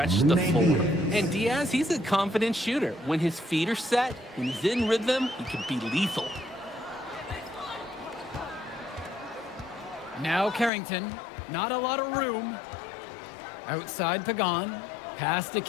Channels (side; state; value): right; drops out; at 10.7 s